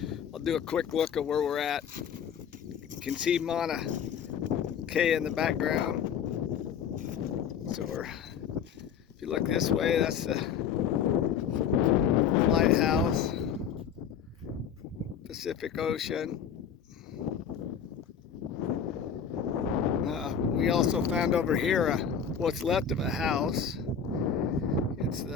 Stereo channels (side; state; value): right; quieter; 7.5 dB